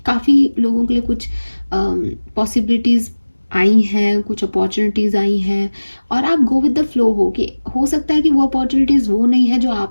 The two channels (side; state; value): both; inverted; correlation -1.00